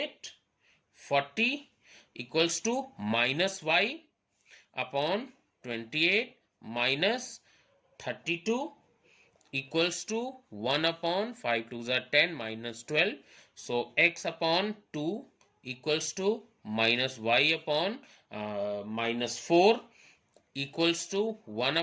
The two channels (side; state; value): both; identical; correlation 1.00